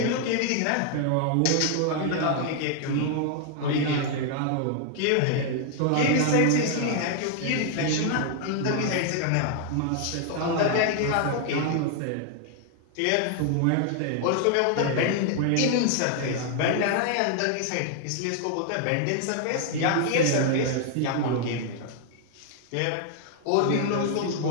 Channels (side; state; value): both; different; correlation 0.00